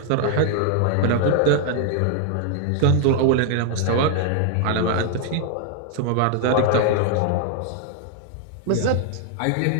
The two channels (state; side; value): different; both; correlation 0.00